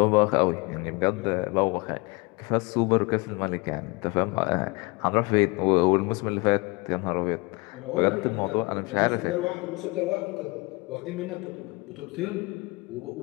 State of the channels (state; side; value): quieter; right; 26.7 dB